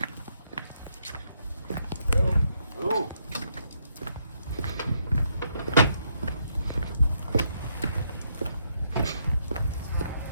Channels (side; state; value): both; inverted; correlation -0.76